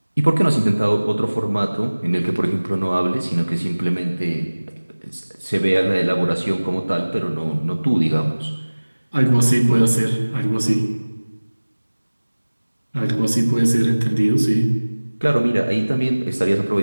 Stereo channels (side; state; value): both; inverted; correlation -1.00